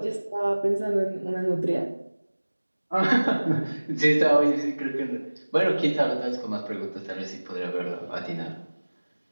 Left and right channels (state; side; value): inverted; both; correlation -1.00